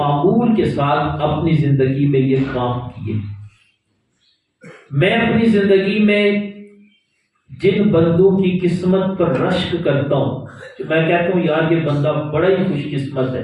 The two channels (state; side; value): identical; both; correlation 1.00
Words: کے ساتھ اپنی زندگی میں یہ کام کیے۔ میں اپنی زندگی میں جن بندوں کی قسمت پر رشک کرتا ہوں، میں کہتا ہوں یار یہ بندہ بڑا ہی خوش قسمت ہے۔